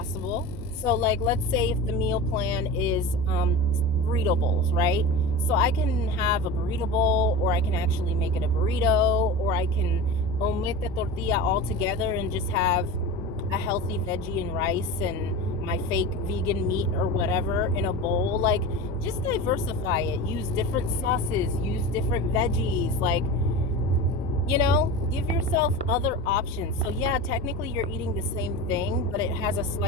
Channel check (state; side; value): normal; both; correlation 0.29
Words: So like, let's say if the meal plan is burrito bowls, right? So I can have a burrito bowl, or I can actually make it a burrito, or I can omit the tortilla altogether and just have a healthy veggie and rice and my fake vegan meat or whatever in a bowl. Like, just diversify it. Use different sauces, use different veggies. Like, give yourself other options. So yeah, technically you're eating the same thing, but it has a